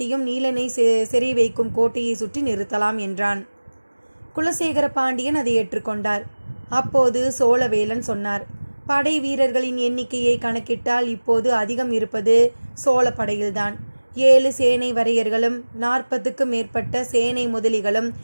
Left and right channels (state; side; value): inverted; both; correlation -1.00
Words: நீலனை சிறை வைக்கும் கோட்டையை சுற்றி நிறுத்தலாம் என்றான். குலசேகர பாண்டியன் அதை ஏற்றுக்கொண்டார். அப்போது சோழவேலன் சொன்னார். படை வீரர்களின் எண்ணிக்கையை கணக்கிட்டால் இப்போது அதிகம் இருப்பது சோழ படையில்தான். 7 சேனை வரையர்களும் 40க்கு மேற்பட்ட சேனை முதலிகளும்